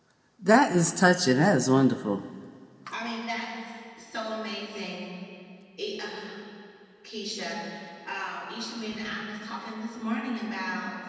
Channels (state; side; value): identical; both; correlation 1.00